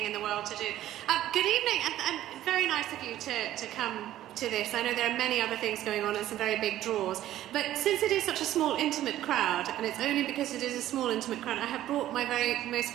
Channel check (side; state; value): left; quieter; 13.3 dB